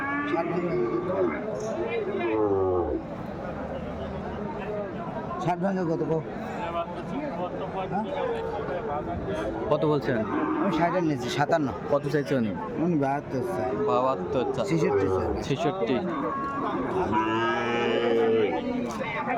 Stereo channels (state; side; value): identical; both; correlation 1.00